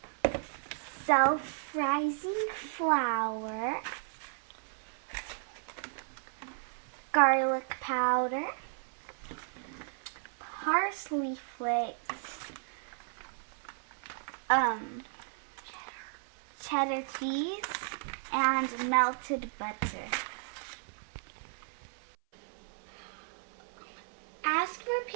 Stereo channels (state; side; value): silent; left; 55 dB below the other